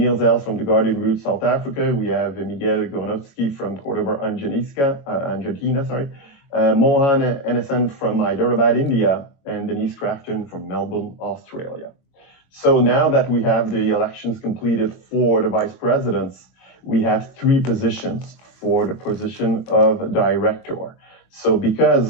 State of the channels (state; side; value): late; right; 22 ms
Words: Els from the Garden Route, South Africa. We have Miguel Gornowski from Cordoba, Argentina, sorry. Mohan Enesan from Hyderabad, India, and Denise Crafton from Melbourne, Australia. So now that we have the elections completed for the vice presidents, we have 3 positions for the position of director. So